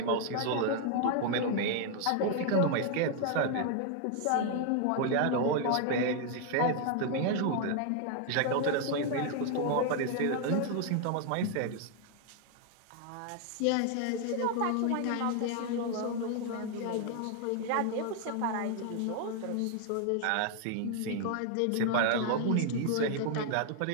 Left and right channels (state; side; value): different; both; correlation 0.00